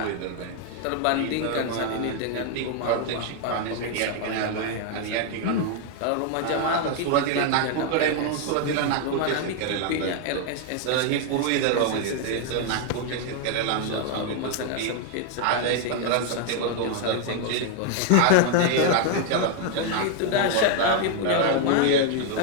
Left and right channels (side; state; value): both; different; correlation 0.00